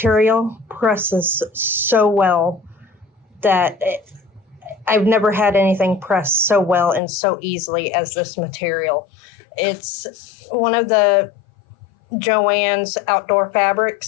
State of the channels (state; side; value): drops out; right; at 7.0 s